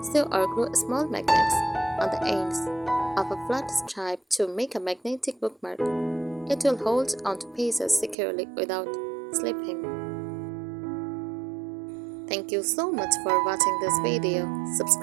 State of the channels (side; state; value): left; drops out; at 8.2 s